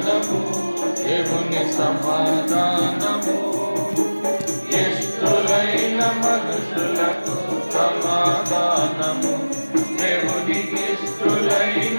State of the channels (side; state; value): both; inverted; correlation -1.00